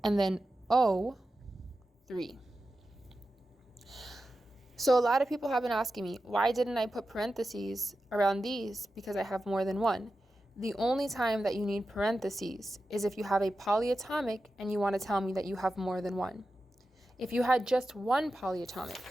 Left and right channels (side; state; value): both; normal; correlation 0.92